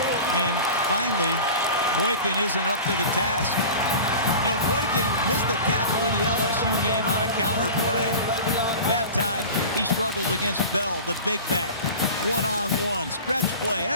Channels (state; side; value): inverted; both; correlation -0.35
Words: And finally, Boykin isn't up to the task. You know, Boykin missed a tackle in the LSU game on a counter play. That time, he struggles against Bell, the big back. One-on-one, stretch play,